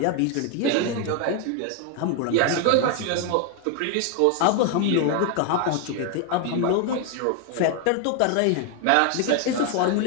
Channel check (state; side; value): different; both; correlation 0.01